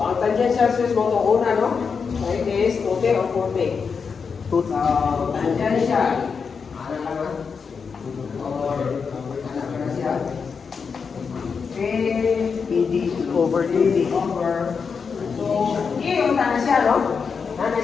tangential stress mo itong una, no? So, it is 2T or 4T. So, tangential. Ano ka na? Or, ano ka na siya? ED over DD. Over. So, E yung tana siya, no? Nana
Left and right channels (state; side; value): quieter; right; 5.7 dB